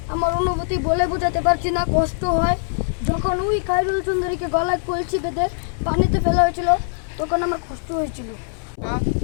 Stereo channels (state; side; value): silent; right; 64 dB below the other